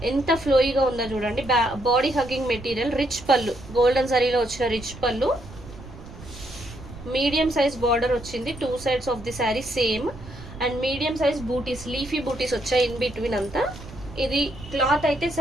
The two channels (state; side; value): noise; right; rumble, 16 dB below the sound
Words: ఎంత ఫ్లోయిగా ఉందో చూడండి. బాడీ హగ్గింగ్ మెటీరియల్, రిచ్ పళ్ళు, గోల్డెన్ జరీలో వచ్చిన రిచ్ పళ్ళు, మీడియం సైజ్ బార్డర్ వచ్చింది 2 sides of the sari same. And medium size బూటీస్, లీఫీ బూటీస్ వచ్చాయి ఇన్ బిట్వీన్ అంతా. ఇది క్లాత్ అయితే